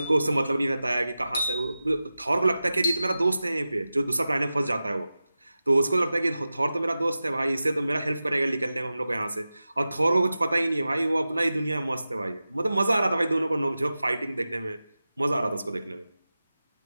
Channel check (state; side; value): inverted; both; correlation -0.94